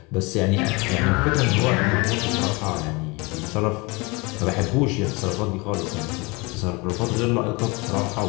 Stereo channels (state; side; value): quieter; right; 26.4 dB